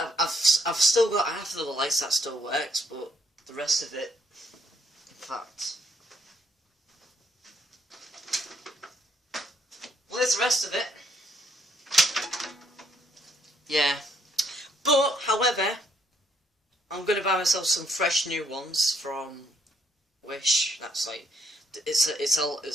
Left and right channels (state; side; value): normal; both; correlation 0.70